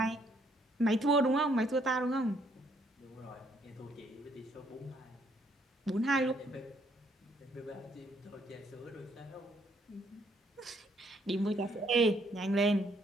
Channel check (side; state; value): both; normal; correlation 0.68